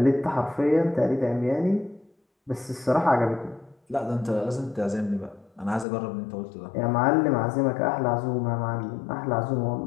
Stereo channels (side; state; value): right; drops out; at 5.9 s